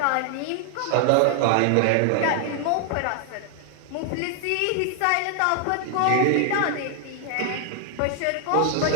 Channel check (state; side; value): different; both; correlation 0.00